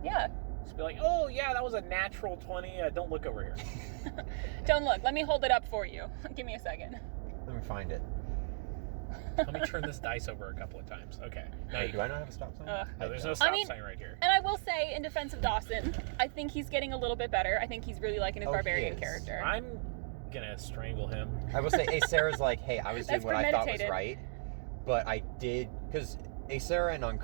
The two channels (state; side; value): silent; left; digital silence